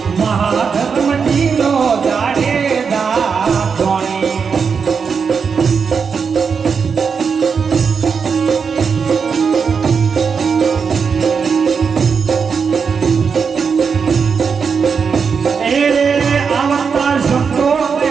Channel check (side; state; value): left; quieter; 5.9 dB